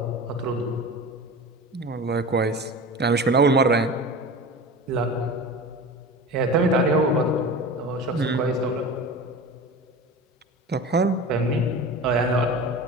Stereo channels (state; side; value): normal; both; correlation 0.33